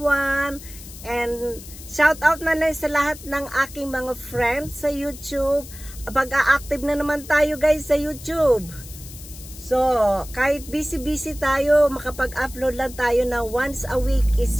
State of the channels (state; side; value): noise; left; hiss, 16 dB below the sound